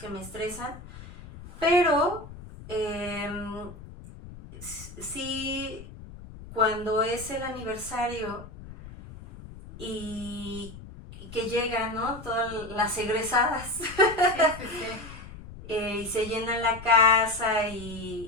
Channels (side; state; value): left; noise; rumble, 15 dB below the sound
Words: me estresan, pero sí, cuando es el aniversario y que llegan, ¿no? Todas las egresadas. Sí, sí, sí. Y se llena la casa